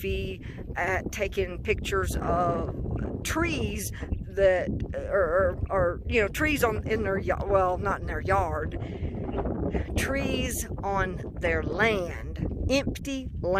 at taking pictures of trees that are you know, trees in their yard, well, not in their yard, trees on their land, empty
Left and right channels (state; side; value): identical; both; correlation 1.00